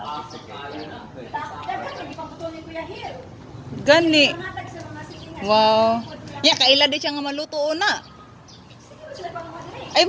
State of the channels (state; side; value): identical; both; correlation 1.00